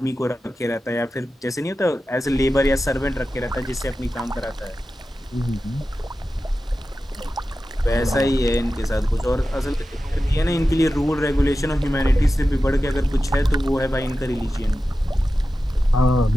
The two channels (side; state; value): both; normal; correlation 0.93